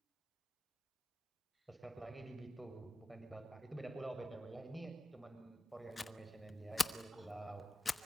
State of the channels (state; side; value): normal; both; correlation 0.93